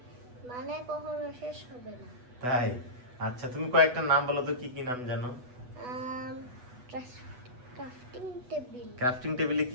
মানে কখনো শেষ হবে না। তাই? আচ্ছা, তুমি কয়েকটা নাম বলো তো, কি কি নাম জানো? ক্রাফটিং টেবিল, ক্রাফটিং টেবিলে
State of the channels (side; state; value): left; late; 8.1 ms